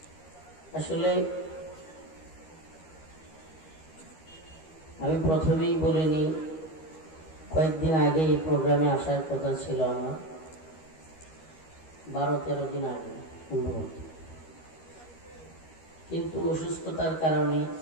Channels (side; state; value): right; late; 13 ms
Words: আসলে আমি প্রথমেই বলিনি, কয়েকদিন আগে এই প্রোগ্রামে আসার কথা ছিল আমার, 12-13 দিন আগে সম্ভবত, কিন্তু অসুস্থতার কারণে